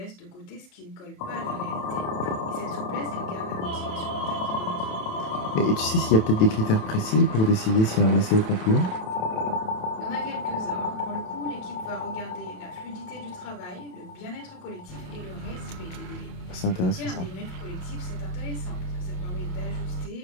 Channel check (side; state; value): right; late; 27 ms